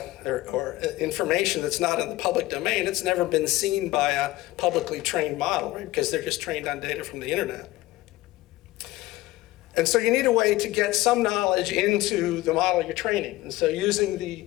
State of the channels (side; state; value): right; quieter; 18.0 dB